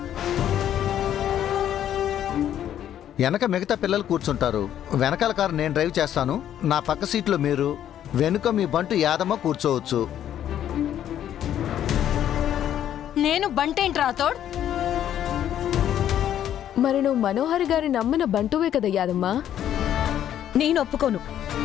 వెనక మిగతా పిల్లలు కూర్చుంటారు. వెనకాల కారు నేను డ్రైవ్ చేస్తాను. నా పక్క సీట్లో మీరు, వెనుక మీ బంటు యాదమ్మ కూర్చోవచ్చు. నేను బంటేంటి రాథోడ్? మరి నువ్వు మనోహర్ గారి నమ్మిన బంటువే కదా యాదమ్మా. నేను ఒప్పుకోను.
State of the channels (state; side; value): quieter; right; 10.7 dB